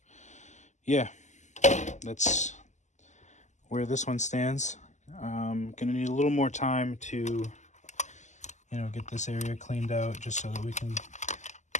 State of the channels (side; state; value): right; late; 0.34 ms